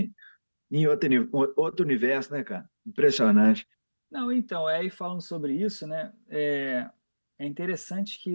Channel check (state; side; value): inverted; both; correlation -1.00